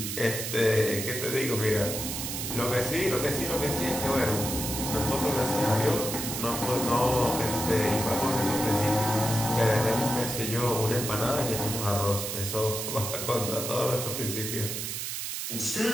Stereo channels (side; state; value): right; noise; hiss, 4 dB below the sound